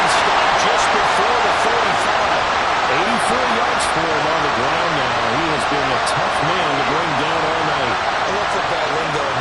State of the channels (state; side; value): identical; both; correlation 1.00